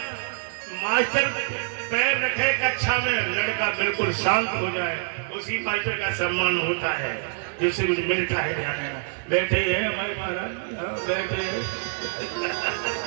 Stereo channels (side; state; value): left; silent; 61 dB below the other